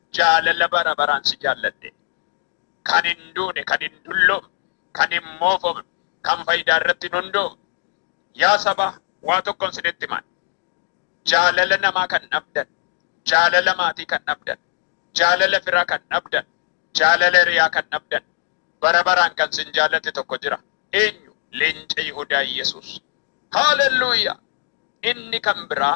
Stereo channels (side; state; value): right; silent; 65 dB below the other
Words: jaalala bara baraan si jaalladhe. Kan hin duune, kan hin dulloomne, kan hin moofofne, kan faayidaa irratti hin hundoofne. Yaa saba waa tokkoon isinitti himan. Jaalala namaa kan dhabdan, jaalala maatii kan dhabdan, jaalala firaa kan dhabdan, jaalala hiriyaa kan dhabdan, bara baraan kan sin jaallate tokko jira. Eenyu? Leenca Yihudaa Yesuus. Haalelluuyaa! Inni kan